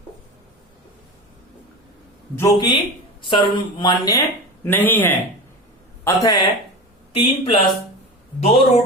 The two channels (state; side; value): normal; both; correlation 0.28